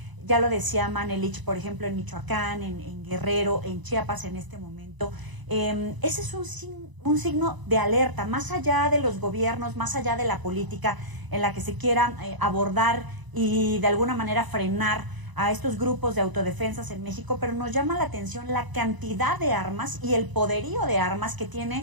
ya lo decía Manelich, por ejemplo, en Michoacán, en Guerrero, en Chiapas en este momento. Ese es un signo de alerta, más allá de los gobiernos, más allá de la política en la que se quiera abordar y de alguna manera frenar a estos grupos de autodefensas en México, pero nos llama la atención la cantidad de armas y el poderío de armas que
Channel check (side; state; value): left; late; 1.0 ms